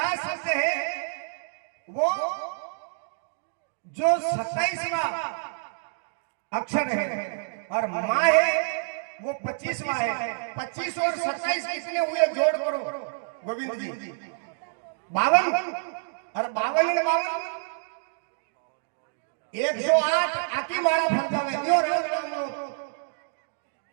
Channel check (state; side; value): silent; left; digital silence